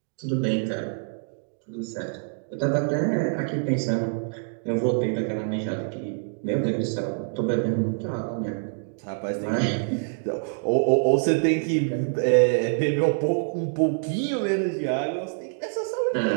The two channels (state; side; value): silent; left; digital silence